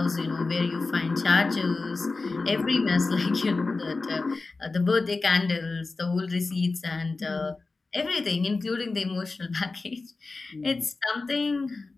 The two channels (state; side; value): quieter; right; 3.7 dB